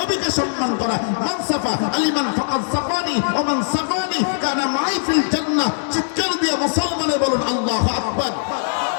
সম্মান করা। মান সাফা আলিমান ফাকাদ সাফানি ওয়া মান সাফানি কানা মাই ফিল জান্নাহ। চিৎকার দিয়ে মুসলমানে বলুন আল্লাহু আকবার।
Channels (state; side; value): silent; right; digital silence